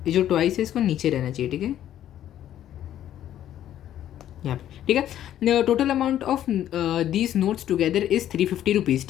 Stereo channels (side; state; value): right; quieter; 11.5 dB